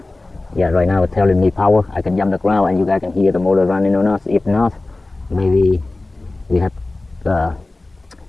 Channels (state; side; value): quieter; right; 3.1 dB